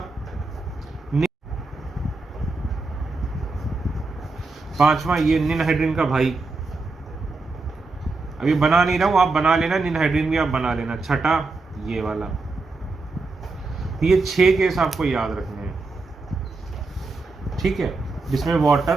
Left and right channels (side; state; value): left; quieter; 3.7 dB